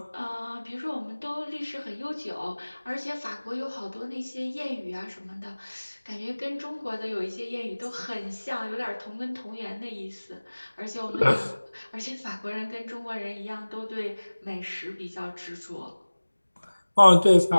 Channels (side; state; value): both; inverted; correlation -1.00